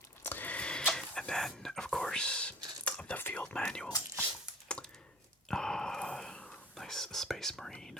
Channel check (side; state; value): both; normal; correlation 0.42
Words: And then, of course, the field manual. Nice Space Marine